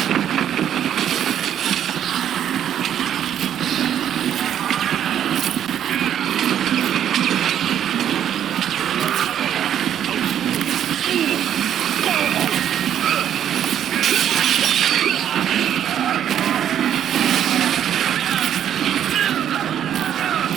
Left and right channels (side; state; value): left; quieter; 10.0 dB